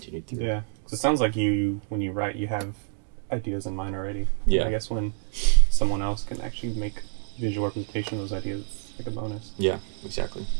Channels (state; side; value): silent; left; 60 dB below the other